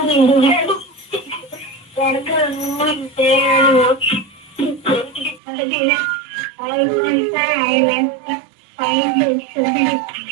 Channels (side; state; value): left; drops out; at 5.4 s